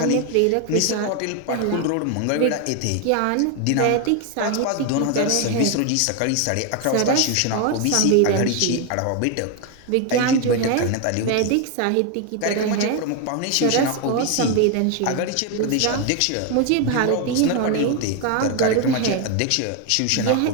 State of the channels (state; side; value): different; both; correlation 0.01